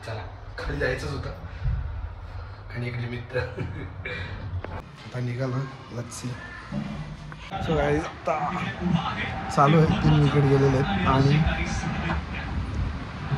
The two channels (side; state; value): both; identical; correlation 1.00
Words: चला खाली जायचंच होतं आणि एक निमित्त आता निघालो. Let's see. सो गाईस आता चालू आहे. 3 विकेट गेलेले आहेत आणि